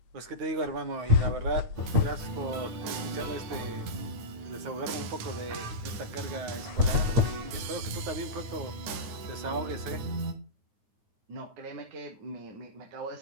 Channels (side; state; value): left; late; 9.3 ms